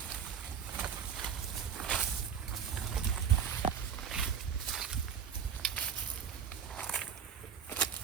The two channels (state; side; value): quieter; left; 7.5 dB